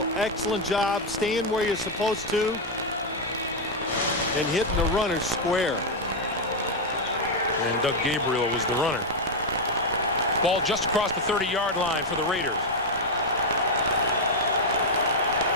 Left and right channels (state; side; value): normal; both; correlation 0.02